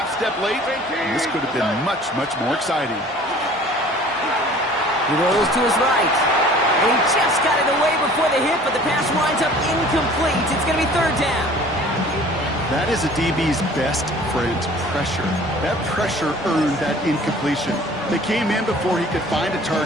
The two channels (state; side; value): normal; both; correlation 0.49